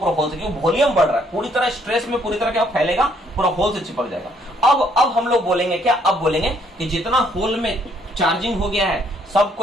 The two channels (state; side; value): normal; both; correlation 0.68